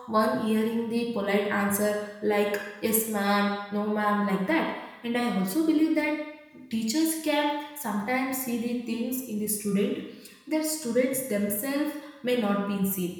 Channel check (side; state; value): both; identical; correlation 1.00